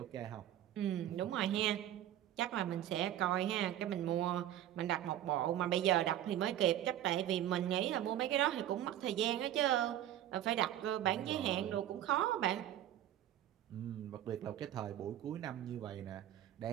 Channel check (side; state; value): left; quieter; 12.1 dB